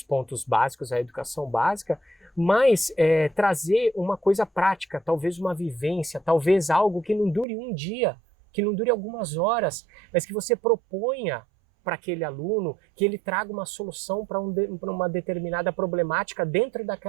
pontos básicos, a educação básica, mas trazer uma coisa prática, talvez uma vivência, talvez algo que não dure um dia, que não dure algumas horas, mas que você proponha para aquele aluno, que ele traga uma solução para uma determinada problemática dentro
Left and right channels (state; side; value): drops out; left; at 7.5 s